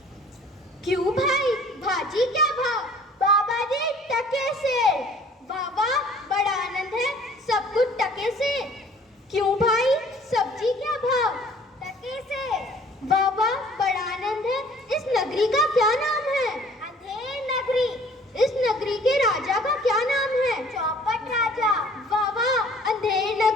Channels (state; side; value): normal; both; correlation 0.53